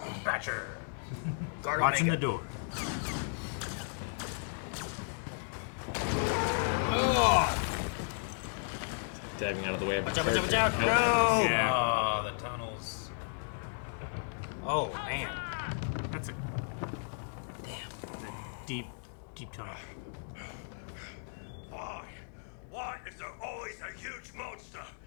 Thatcher! Guard Watching the Omega. door. Diving out of the way of Watch out, watch out, watch out! character. No! Yeah. Oh, the tunnels. Oh, man. That's a deep, deep tunnel. Why? Why is there always a huge monster?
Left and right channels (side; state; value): right; silent; digital silence